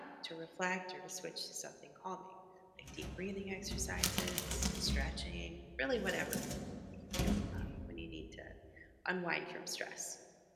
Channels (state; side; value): identical; both; correlation 1.00